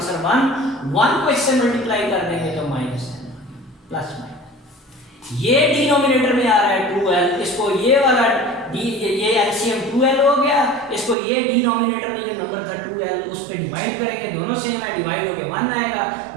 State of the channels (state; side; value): drops out; left; at 11.2 s